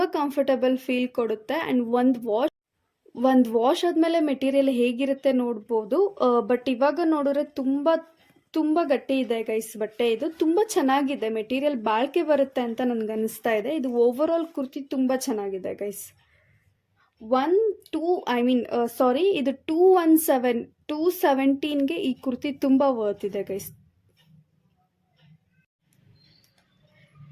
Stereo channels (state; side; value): identical; both; correlation 1.00